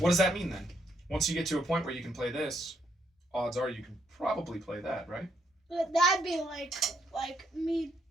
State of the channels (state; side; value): normal; both; correlation 0.74